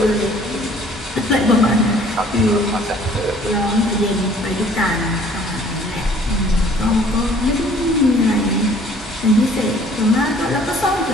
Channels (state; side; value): normal; both; correlation 0.55